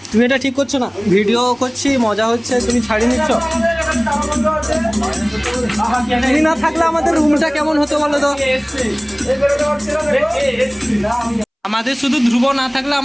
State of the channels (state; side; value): identical; both; correlation 1.00